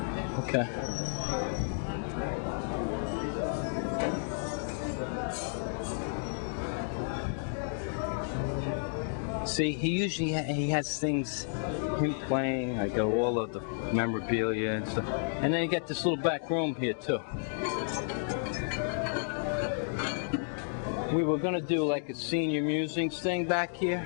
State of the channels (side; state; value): right; silent; digital silence